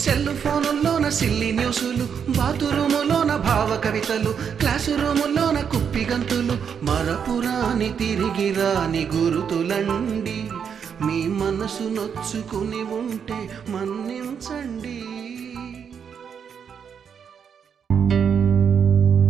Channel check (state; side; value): quieter; left; 7.3 dB